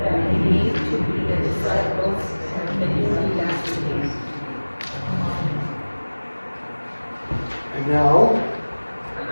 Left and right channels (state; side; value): inverted; both; correlation -1.00